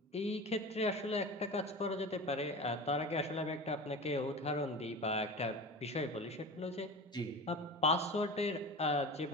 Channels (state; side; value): normal; both; correlation 0.31